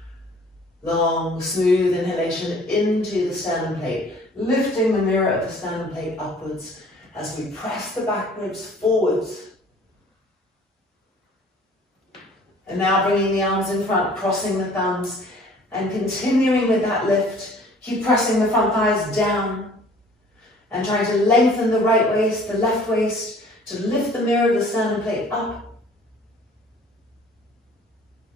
Long, smooth inhalation into the sternum plate, lifting the mirror of the sternum plate upwards as we press the back ribs forwards. And now bringing the arms in front, crossing the thumbs, and continuing with that lift. Keep pressing the front thighs down and trying to lengthen the right waist, the left waist, to lift the mirror of the sternum plate up.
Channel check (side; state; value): both; normal; correlation 0.52